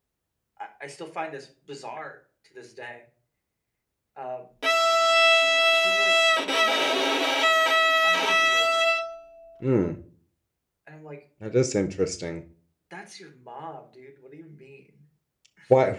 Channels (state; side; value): identical; both; correlation 1.00